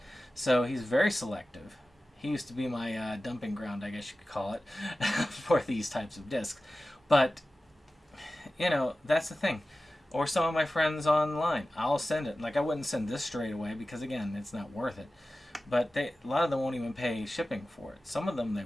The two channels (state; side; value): normal; both; correlation 0.95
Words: So he's very selective. He used to be my dumping ground, I guess you could call it, for these types of discs. But, you know, that's the thing. Or some of my friends online. I'll send it. Like, I wouldn't send this straight away because, again, it's not worth it. But a lot of them won't even pay shipping for it. Some of them they